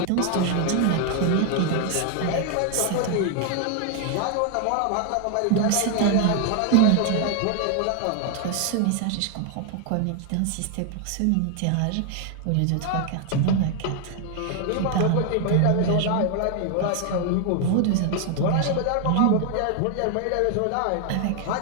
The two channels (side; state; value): both; different; correlation 0.00